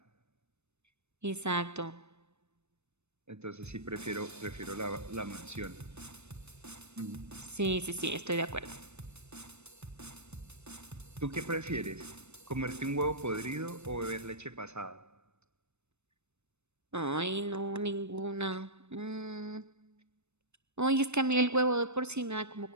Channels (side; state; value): left; late; 0.81 ms